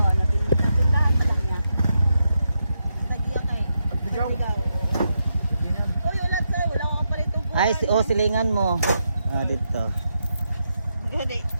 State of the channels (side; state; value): both; inverted; correlation -0.83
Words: lang niya. Tagiya kay. Pagbigaw. Oh, yung lahat sa'yo. Wala akong palitong buwan. Ay, silingan mo. Ah, dito. Gadi.